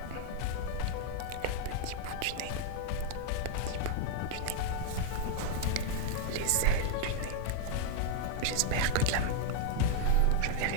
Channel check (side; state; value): both; different; correlation 0.00